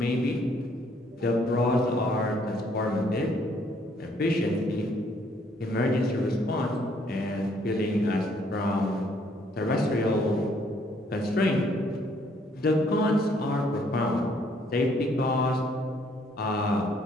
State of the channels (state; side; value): normal; both; correlation 0.66